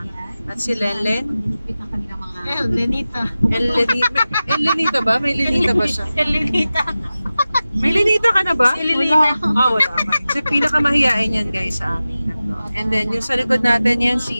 At si Lenlen. Lenita. Lenita ba? May Lenita ba siya? Lenita. May Lenita ka na ba? Wala. Wala. So, pinakamahiyain yan guys sa amin. And then, yung sa likod natin yan,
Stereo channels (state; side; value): inverted; both; correlation -0.95